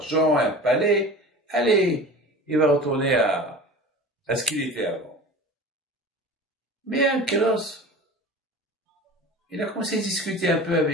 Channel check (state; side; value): normal; both; correlation 0.36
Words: un palais. Allez, il va retourner à ce qu'il était avant. Mais Ankylos, il a commencé à discuter un peu